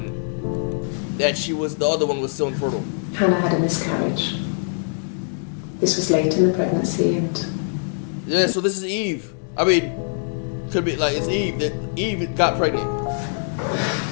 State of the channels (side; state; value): right; silent; 60 dB below the other